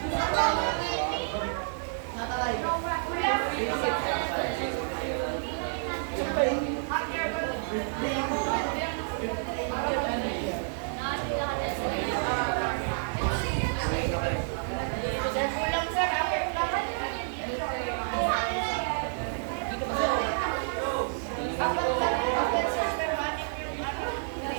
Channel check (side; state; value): left; silent; 58 dB below the other